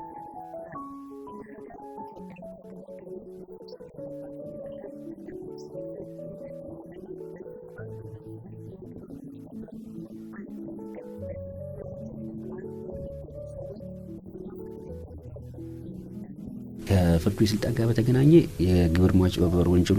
ያክላል። እንደ ሀገር ኢትዮጵያ ከግብር ገቢ መሰብሰብ ያለባትን ያህል እንደማትሰበስብ ይነገራልና ለዚህ አንዱ መንስኤ የግብር ማጭበርበር መሆኑ አያጠያይቅም። በዚህ የወንጀል ተግባር የሚገኙ ሰዎች በየትኛው ፍርድ ቤት ደረጃ ይሆን የሚዳኙት? ከፍርድ ቤት ስልጣን ጋር በተገናኘ የግብር ማጭበርበር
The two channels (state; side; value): identical; both; correlation 1.00